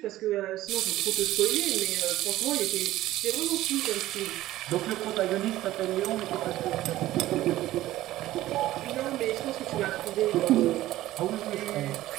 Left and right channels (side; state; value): left; quieter; 15.3 dB